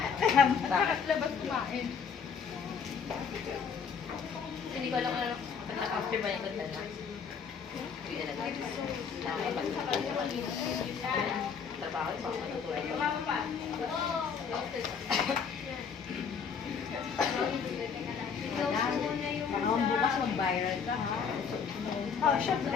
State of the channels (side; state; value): right; quieter; 6.4 dB